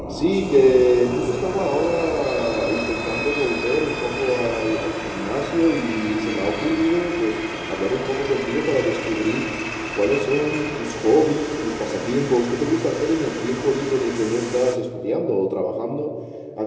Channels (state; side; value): identical; both; correlation 1.00